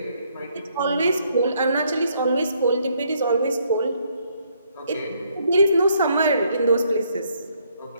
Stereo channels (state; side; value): inverted; both; correlation -0.70